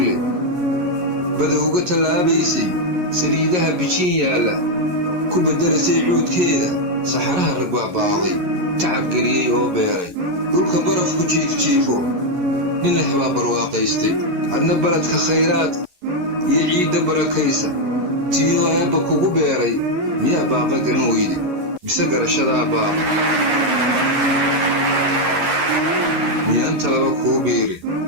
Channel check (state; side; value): late; left; 11 ms